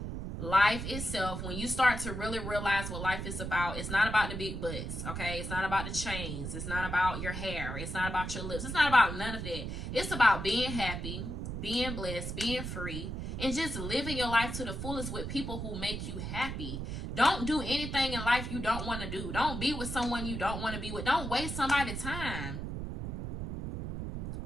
life itself, when you start to really realize what life is about, it's not about the big butts, okay? It's not about the chains. It's not about your hair. It's not about your lips. It's not about none of that. It's about being happy, being blessed, being free, and just living your life to the fullest with people who make you happy. Don't do anything in life you don't want to do. Don't be with someone you don't want to be with. Don't waste somebody's time.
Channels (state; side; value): noise; right; rumble, 5 dB below the sound